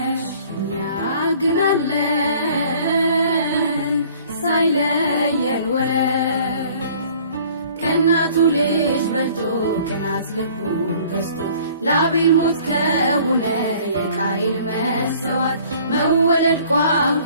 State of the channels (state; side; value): inverted; both; correlation -0.53